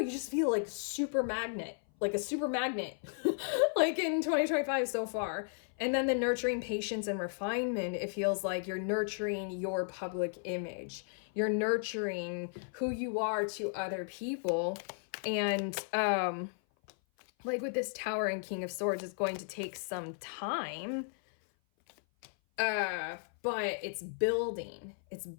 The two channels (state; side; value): silent; right; 55 dB below the other